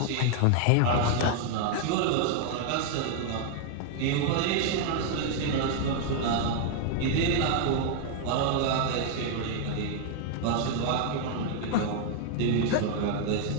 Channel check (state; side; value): different; both; correlation 0.00